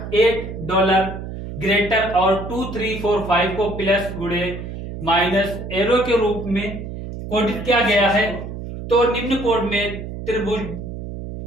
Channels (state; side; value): noise; right; hum, 9 dB below the sound